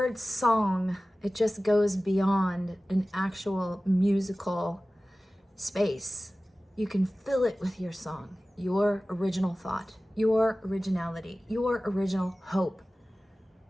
song, it just goes beyond an actual musical space. You can fill it with your song, your original thought, your originality, your original hope,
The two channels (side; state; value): both; normal; correlation 0.96